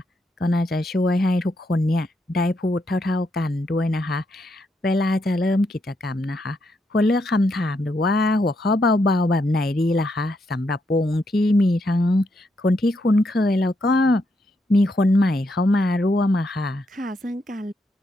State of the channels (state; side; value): normal; both; correlation 0.79